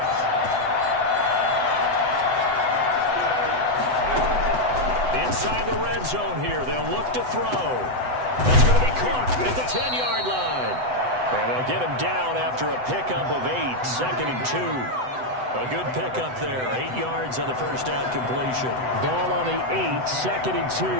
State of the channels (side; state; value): left; late; 7.9 ms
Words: Inside the red zone here, they'll look to throw. That's going to be caught at the 10-yard line. And they'll get him down after a pickup of 8, 2nd and 2. A good pickup there. 8 yards on the first down completion. Ball on the 8, 2nd and 2.